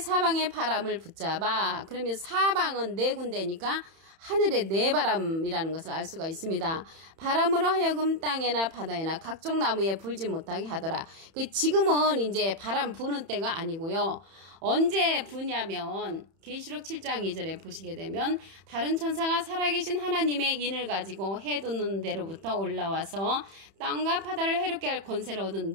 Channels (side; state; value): left; late; 31 ms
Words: 바람을 붙잡아. 그러면 사방은 네 군데니까 하늘의 네 바람이라는 것을 알 수가 있습니다. 바람으로 하여금 땅에나 바다에나 각종 나무에 불지 못하게 하더라. 지금은 이제 바람 부는 때가 아니고요. 언제 부냐면 계시록 7장 2절에 보시게 되면 다른 천사가 살아계신 하나님의 인을 가지고 해 돋는 데로부터 올라와서 땅과 바다를 해롭게 할 권세를